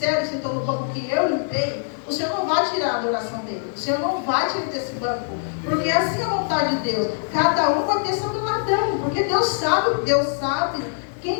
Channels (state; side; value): silent; right; 64 dB below the other